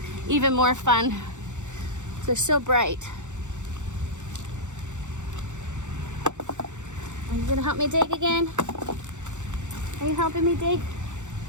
even more fun. They're so bright. Are you gonna help me dig again? Are you helping me dig?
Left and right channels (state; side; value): late; left; 0.85 ms